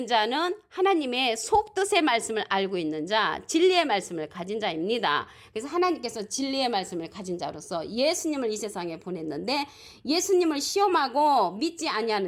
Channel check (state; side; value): identical; both; correlation 1.00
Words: 자는 하나님의 속뜻의 말씀을 알고 있는 자, 진리의 말씀을 가진 자입니다. 그래서 하나님께서 진리의 말씀을 가진 자로서 예수님을 이 세상에 보냈는데 예수님을 시험하고 믿지